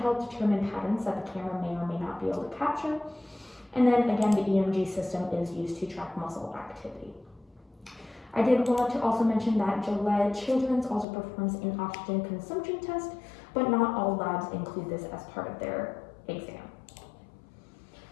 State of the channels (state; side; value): drops out; right; at 11.1 s